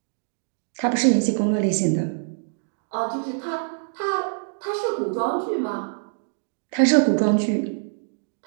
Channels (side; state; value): left; silent; digital silence